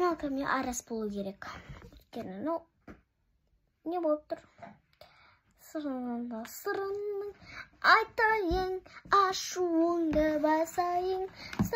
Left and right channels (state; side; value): identical; both; correlation 1.00